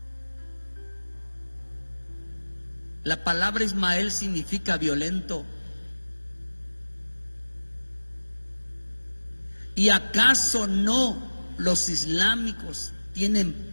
La palabra Ismael significa violento. ¿Y acaso no los islámicos tienen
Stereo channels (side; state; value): both; inverted; correlation -1.00